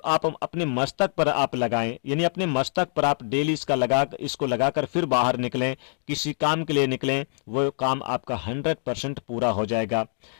आप अपने मस्तक पर आप लगाएं, यानी अपने मस्तक पर आप डेली इसको लगाकर फिर बाहर निकलें, किसी काम के लिए निकलें, वो काम आपका 100% पूरा हो जाएगा।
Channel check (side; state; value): right; silent; digital silence